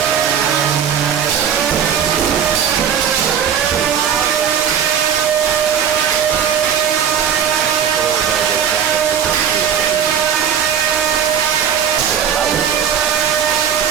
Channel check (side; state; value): left; quieter; 8.2 dB